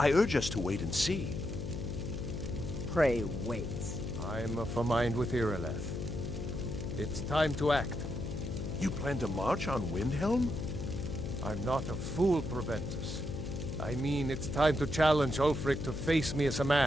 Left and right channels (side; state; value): left; noise; hum, 5 dB below the sound